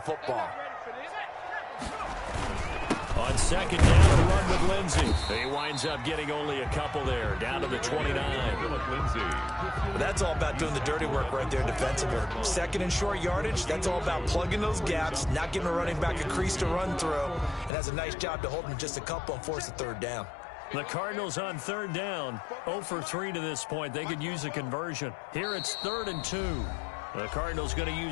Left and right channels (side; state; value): right; drops out; at 17.7 s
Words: football. On 2nd down, a run with Lindsey. He winds up getting only a couple there, down to the 29. That's all about doing the dirty work right there defensively. 2nd and short yardage, that's all about plugging those gaps, not giving a running back a crease to run through, and has a nice job to hold him just a couple and force a 3rd down. The Cardinals on 3rd down, 0 for 3 to this point. They could use a conversion. Here it's 3rd and 2. The Cardinals going to